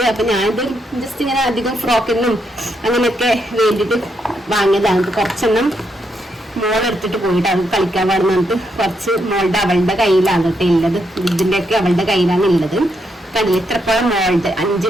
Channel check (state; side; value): normal; both; correlation 0.79